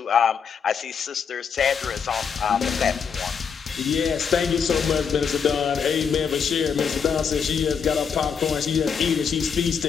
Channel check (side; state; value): right; quieter; 6.6 dB